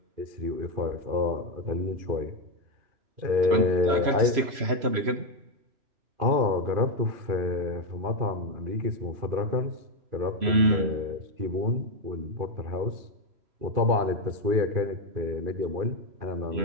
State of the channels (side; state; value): left; late; 3.0 ms